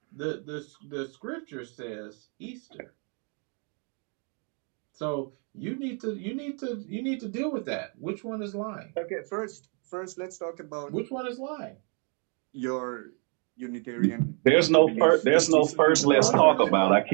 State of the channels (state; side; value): quieter; left; 38.3 dB